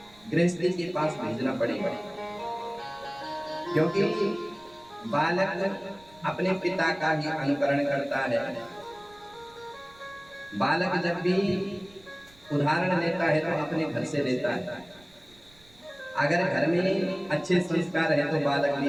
गृहस्थी के पास भेजना पड़ेगा, क्योंकि बालक अपने पिता का ही अनुकरण करता है। बालक जब भी उदाहरण लेता है तो अपने घर से लेता है। अगर घर में अच्छे संस्कार है तो बालक भी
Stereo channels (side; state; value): right; noise; rumble, 27 dB below the sound